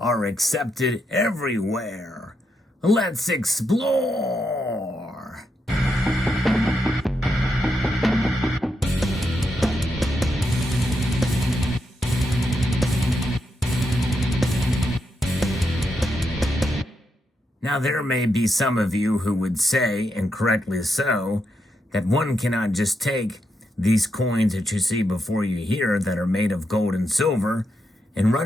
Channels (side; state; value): both; normal; correlation 0.82